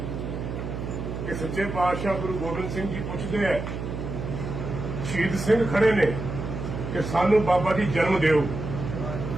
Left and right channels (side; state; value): right; noise; hum, 6 dB below the sound